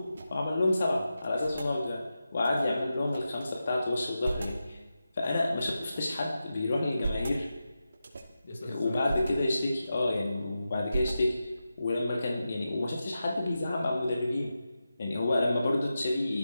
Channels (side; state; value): both; inverted; correlation -0.91